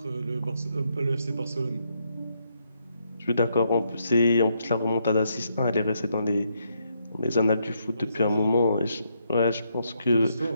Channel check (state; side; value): inverted; both; correlation -0.77